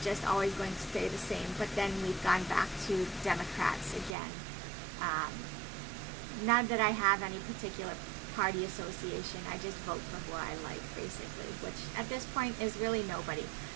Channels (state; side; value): drops out; left; at 4.2 s